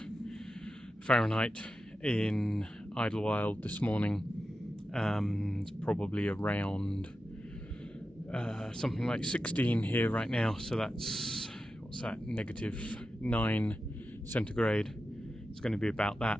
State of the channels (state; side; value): normal; both; correlation 0.91